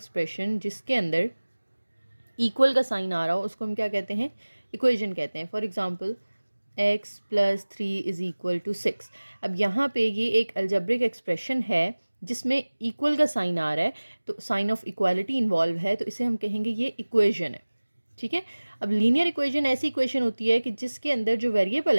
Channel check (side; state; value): both; inverted; correlation -1.00